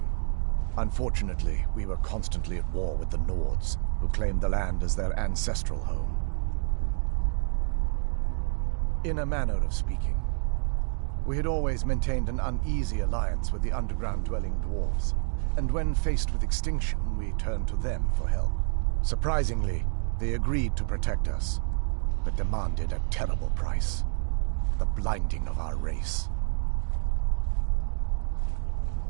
Unfortunately, we were constantly at war with the Nords, who claimed the land as their ancestral home. In a manner of speaking, we had always maintained an uneasy alliance with the underground-dwelling dwarves, and when faced with extinction, we turned to them for help. Surprisingly, they agreed to protect us. but demanded a terrible price. The blinding of our race.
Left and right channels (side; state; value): left; silent; 59 dB below the other